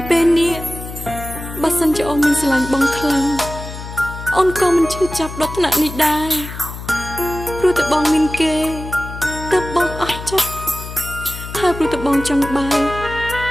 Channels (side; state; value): left; noise; hum, 10 dB below the sound